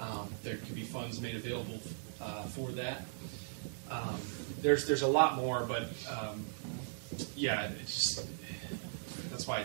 There could be funds made available for that. There's a lot more, but yeah, that's why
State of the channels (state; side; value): silent; left; 52 dB below the other